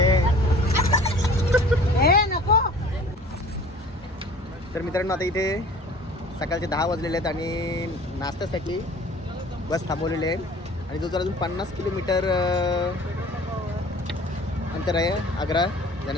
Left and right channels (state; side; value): normal; both; correlation 0.47